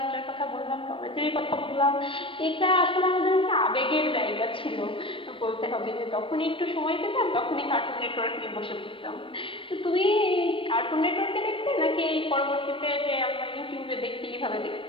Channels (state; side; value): late; right; 0.25 ms